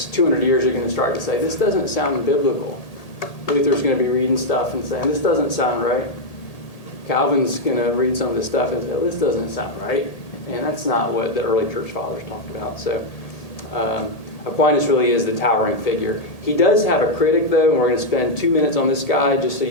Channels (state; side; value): late; right; 1.8 ms